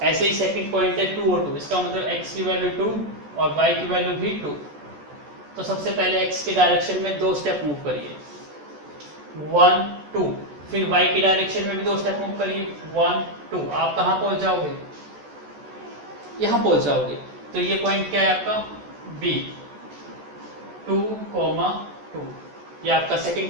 ऐसे ही सेकंड पॉइंट है 2 और 2. इसका मतलब x की वैल्यू 2 और y की वैल्यू भी 2. तो सबसे पहले x की डायरेक्शन में 2 स्टेप मूव करिए. 1, 2. फिर y की डायरेक्शन में भी 2 स्टेप मूव करिए. 1, 2. आप कहां पहुंच जाओगे? यहां पहुंच जाओगे. तो ये पॉइंट क्या है आपका? B. 2, 2. ये आपका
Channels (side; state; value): left; late; 14 ms